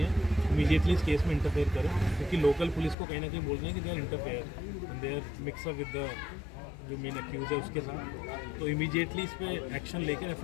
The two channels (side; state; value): right; drops out; at 3.0 s